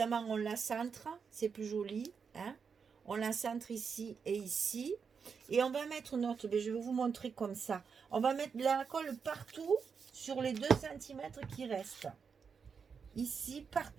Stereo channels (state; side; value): quieter; left; 6.0 dB